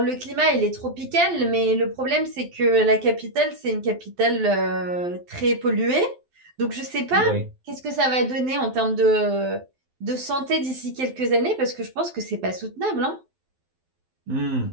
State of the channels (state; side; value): late; left; 12 ms